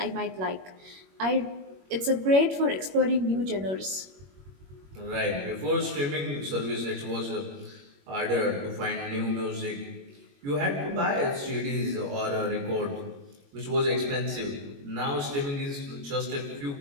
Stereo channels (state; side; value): late; left; 21 ms